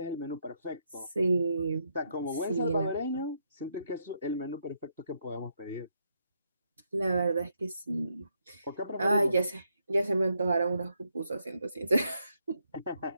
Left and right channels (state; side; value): inverted; both; correlation -0.77